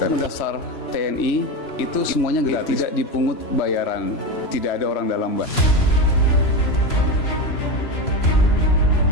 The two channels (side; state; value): right; late; 3.0 ms